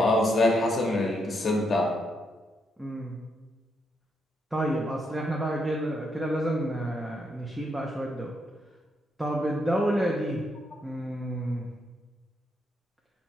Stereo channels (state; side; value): normal; both; correlation 0.78